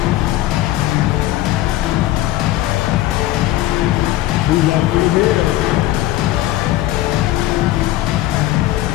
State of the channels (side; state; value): right; quieter; 15.2 dB